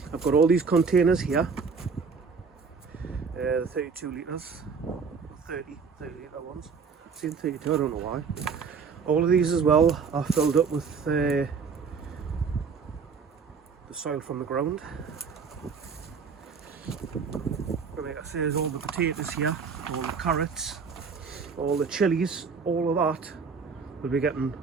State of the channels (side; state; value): left; quieter; 5.5 dB